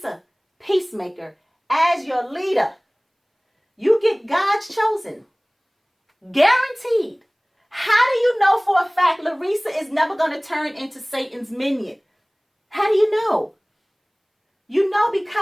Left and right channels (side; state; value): both; identical; correlation 1.00